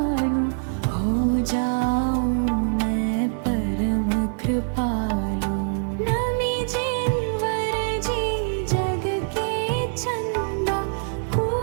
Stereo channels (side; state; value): left; silent; digital silence